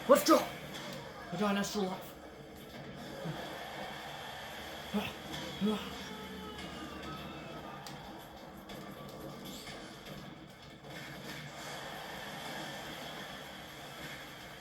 Let's go! I got an extra life.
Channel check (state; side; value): identical; both; correlation 1.00